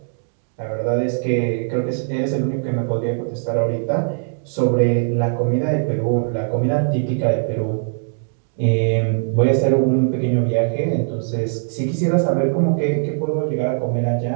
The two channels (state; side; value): silent; left; digital silence